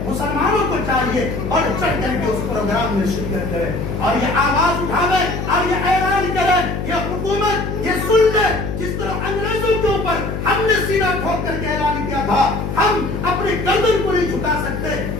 مسلمانوں کو چاہیے بڑھ چڑھ کر کے اس پروگرام میں شرکت کریں اور یہ آواز اٹھاویں اور یہ اعلان کریں۔ یہ حکومت یہ سن لے، جس طرح انگریزوں کے اوپر ہم نے سینہ ٹھوک کر کے اعلان کیا تھا، ہم اپنی گردن کو نہیں جھکا سکتے،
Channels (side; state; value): left; noise; hum, 4 dB below the sound